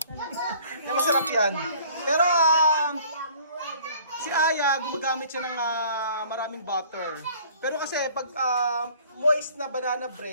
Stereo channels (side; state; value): both; inverted; correlation -0.54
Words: Kaya masarap yan. Pero si Aya, gumagamit siya ng maraming butter. Pero kasi pag moist na banana